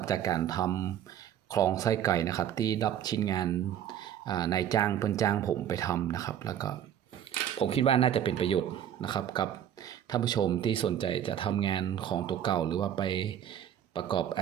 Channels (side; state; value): left; quieter; 10.1 dB